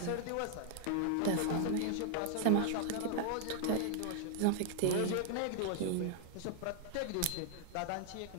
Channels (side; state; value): both; different; correlation 0.00